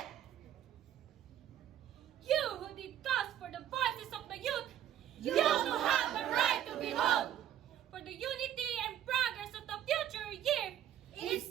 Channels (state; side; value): quieter; left; 11.1 dB